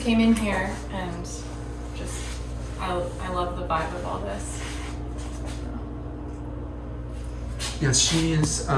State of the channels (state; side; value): identical; both; correlation 1.00